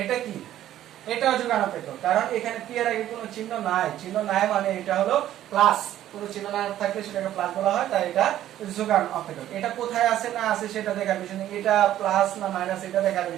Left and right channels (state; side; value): quieter; left; 12.5 dB